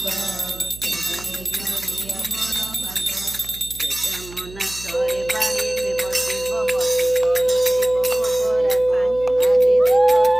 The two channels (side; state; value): right; noise; hum, 17 dB below the sound